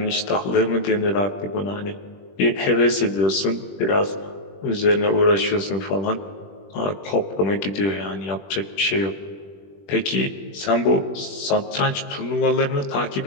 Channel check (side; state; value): right; late; 21 ms